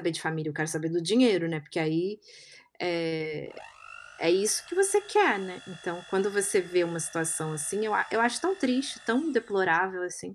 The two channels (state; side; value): identical; both; correlation 1.00